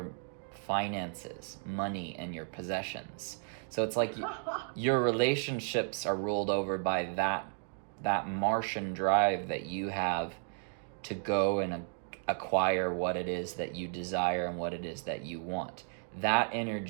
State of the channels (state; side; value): silent; left; 55 dB below the other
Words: finances, money, and your possessions. So it's like your relationships are ruled over by that Martian drive that you have to go and acquire what it is that you desire and what it is that you want. That